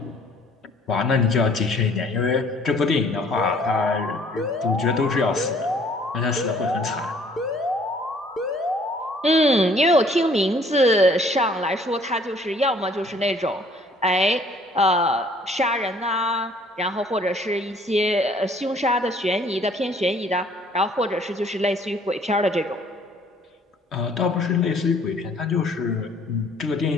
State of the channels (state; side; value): normal; both; correlation 0.58